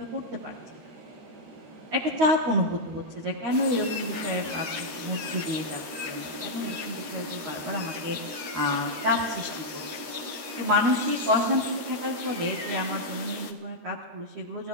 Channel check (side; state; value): left; late; 13 ms